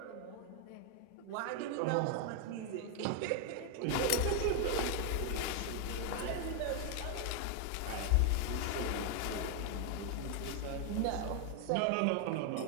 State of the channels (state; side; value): different; both; correlation 0.00